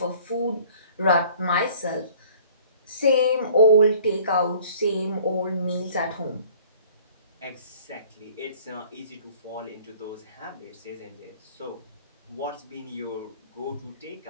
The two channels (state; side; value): inverted; both; correlation -0.52